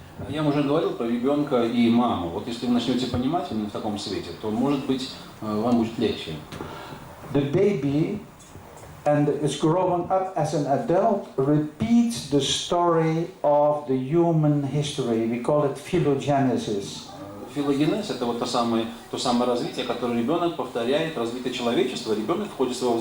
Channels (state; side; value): identical; both; correlation 1.00